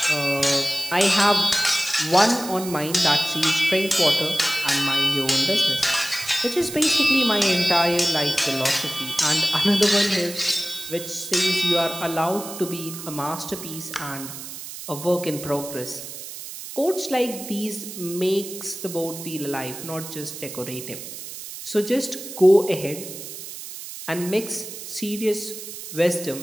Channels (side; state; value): right; noise; hiss, 11 dB below the sound